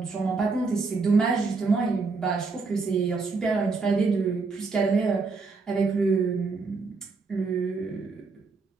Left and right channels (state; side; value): quieter; left; 4.2 dB